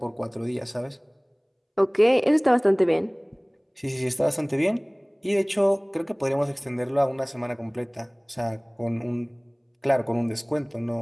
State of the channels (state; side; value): identical; both; correlation 1.00